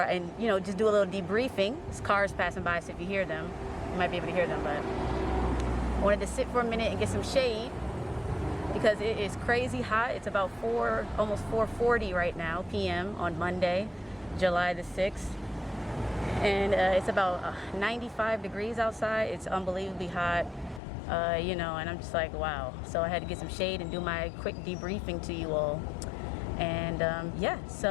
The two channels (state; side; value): drops out; right; at 20.8 s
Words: and you know, just do a little debriefing. There's cars passing by, so if you hear them, you might be able to hear them, but I wanted to sit for a minute and get some shade because it is crazy hot. It's about almost 4:40 right now p.m. on Monday, July the 6th, and it's about 95 degrees outside. It's unbelievably hot, you know, and I'm just like, wow. So I had to get some shade and do my quick debriefing to you all, and yeah.